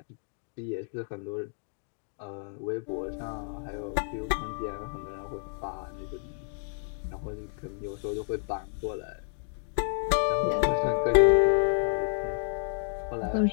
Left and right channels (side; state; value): right; silent; 58 dB below the other